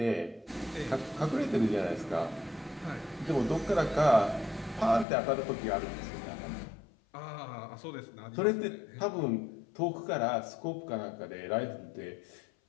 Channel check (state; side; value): drops out; right; at 5.1 s